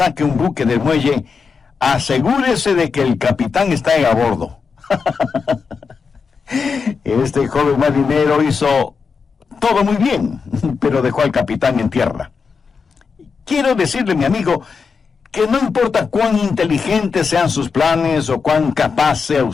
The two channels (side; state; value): right; quieter; 5.4 dB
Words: un buque del muelle, asegúrese de que el capitán está a bordo. Este joven marinero hizo todo muy bien, pero dejó al capitán en tierra. Quiero decirle, mi amigo, que no importa cuán inteligentes sean sus planes o cuán capaz sea